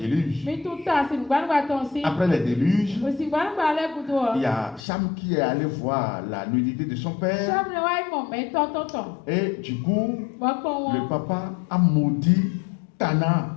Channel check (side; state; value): right; drops out; at 4.8 s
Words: Après le déluge, il y a Cham qui est allé voir la nudité de son père. Et du coup, le papa a maudit Canaan.